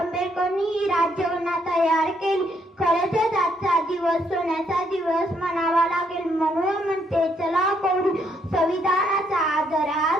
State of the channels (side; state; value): both; normal; correlation 0.72